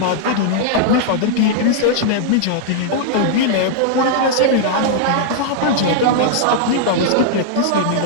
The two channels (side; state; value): both; different; correlation -0.01